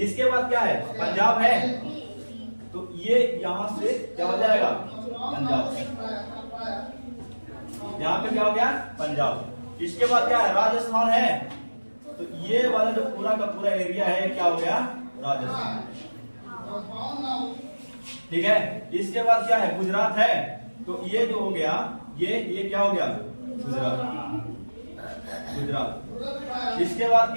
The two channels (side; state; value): both; inverted; correlation -1.00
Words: इसके बाद क्या है, पंजाब है, तो ये यहां से क्या हो जाएगा, पंजाब, यहाँ पे क्या हो गया, पंजाब। इसके बाद क्या है, राजस्थान है, तो ये वाला जो पूरा का पूरा एरिया है क्या हो गया, राजस्थान, ठीक है। इसके बाद क्या है, गुजरात है, तो ये जो हो गया, ये क्या हो गया, गुजरात, गुजरात। इसके बाद